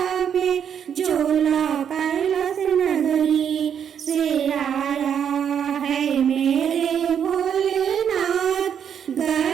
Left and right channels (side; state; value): left; quieter; 8.2 dB